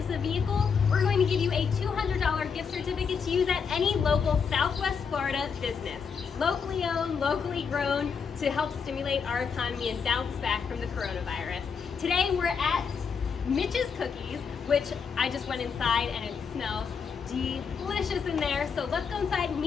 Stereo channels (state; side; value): quieter; right; 6.1 dB